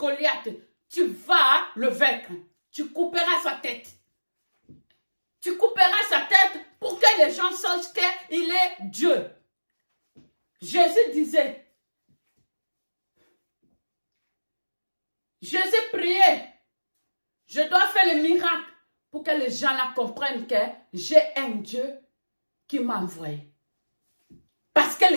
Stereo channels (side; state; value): both; inverted; correlation -1.00